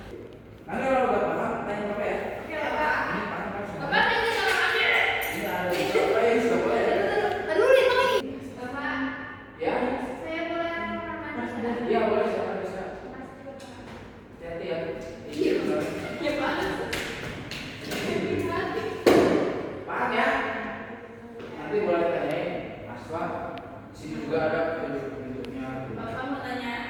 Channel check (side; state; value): both; identical; correlation 1.00